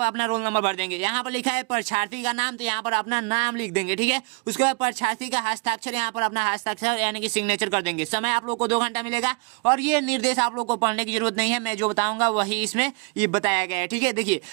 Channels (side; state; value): left; quieter; 33.4 dB